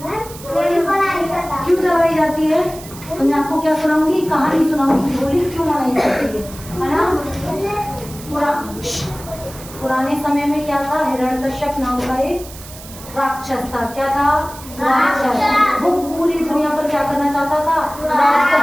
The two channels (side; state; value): right; noise; hiss, 16 dB below the sound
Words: क्यों जलाई जाती है? तो मैं आपको क्या सुनाऊंगी, कहानी सुनाऊंगी होली क्यों मनाई जाती है ना। पुराने समय में क्या था, हिरण्यकश्यप नाम का एक राक्षस था। क्या था? राक्षस। वो पूरी दुनिया पर क्या करना चाहता था? राज